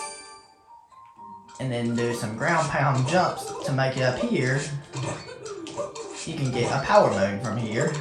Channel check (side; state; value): both; identical; correlation 1.00